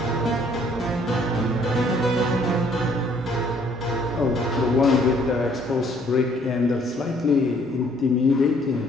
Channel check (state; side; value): normal; both; correlation 0.62